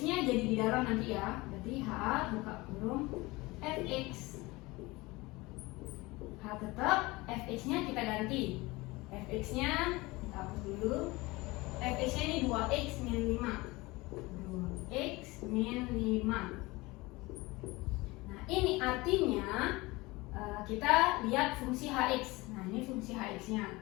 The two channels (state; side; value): quieter; right; 22.1 dB